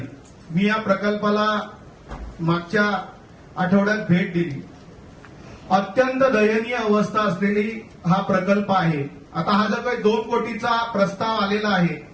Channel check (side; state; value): both; identical; correlation 1.00